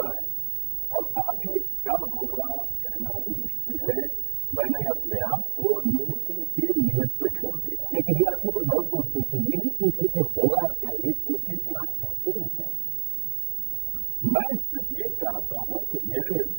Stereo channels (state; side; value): silent; left; 60 dB below the other